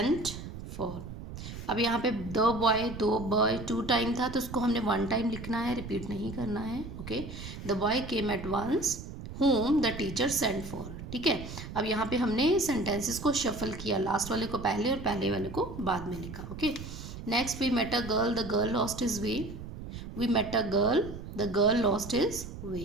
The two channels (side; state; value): right; noise; rumble, 10 dB below the sound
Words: for. अब यहाँ पे दो boy 2 time था, तो उसको हमने 1 time लिखना है, रिपीट नहीं करना है. Okay. The boy came at once whom the teacher sent for. ठीक है, अब यहाँ पे हमने सेंटेंसेस को शफल किया, लास्ट वाले को पहले और पहले वाले को बाद में लिखा. Okay. Next, we met a girl, the girl lost his way. We met a girl, the girl lost his way.